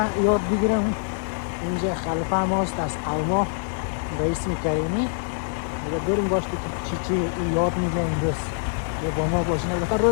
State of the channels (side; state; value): right; silent; digital silence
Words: یاد بگیرم. اینجا خلیفه ماست از قلما به اسم کریمی و بریم داشته که چی یاد میگه امروز و با ما باشین. البته